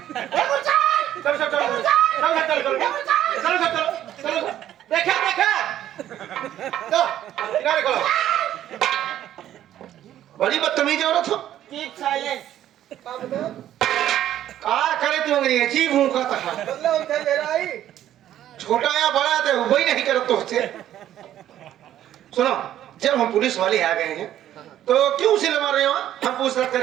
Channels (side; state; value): left; quieter; 11.9 dB